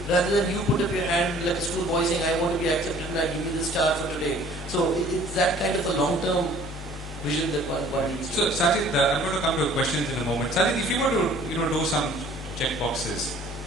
rather than you put up your hand like a schoolboy saying, I want to be accepted and I give you the star for today. So it's that kind of a long-term vision that one needs. So Sajid, I'm going to come to questions in a moment. Sajid, if you were to do some check boxes,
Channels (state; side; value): normal; both; correlation 0.52